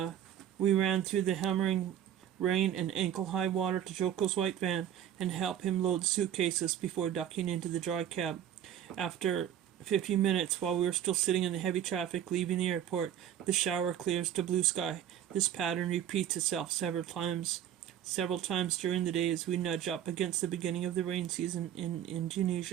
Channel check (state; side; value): quieter; left; 10.3 dB